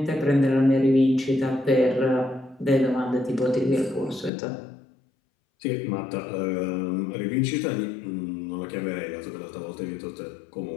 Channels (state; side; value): drops out; right; at 4.3 s